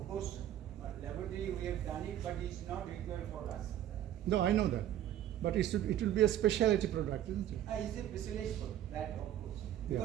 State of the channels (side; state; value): left; quieter; 11.7 dB